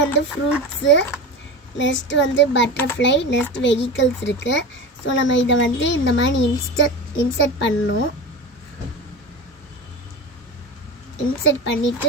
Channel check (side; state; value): both; normal; correlation 0.27